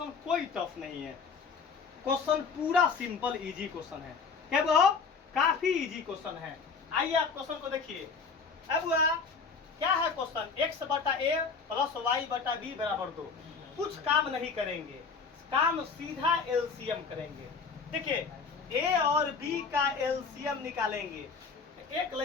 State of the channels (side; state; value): right; quieter; 5.1 dB